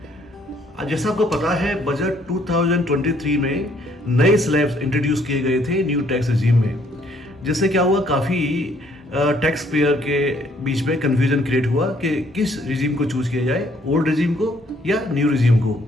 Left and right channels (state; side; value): normal; both; correlation 0.65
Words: जैसा आपको पता है, बजट 2023 में नए स्लैब्स इंट्रोड्यूस किए गए थे न्यू टैक्स रिजीम में, जिससे क्या हुआ, काफ़ी टैक्स पेयर के बीच में कन्फ्यूजन क्रिएट हुआ कि किस रिजीम को चूज किया जाए, ओल्ड रिजीम को या न्यू रिजीम को।